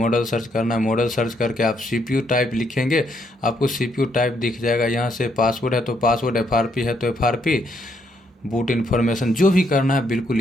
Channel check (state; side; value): normal; both; correlation 0.73